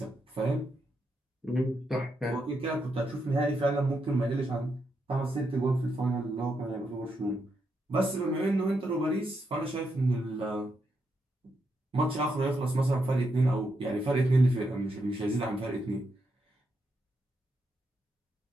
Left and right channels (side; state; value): both; normal; correlation 0.82